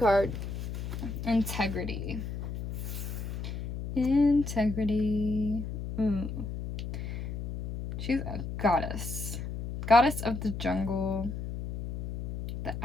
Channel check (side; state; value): left; noise; hum, 6 dB below the sound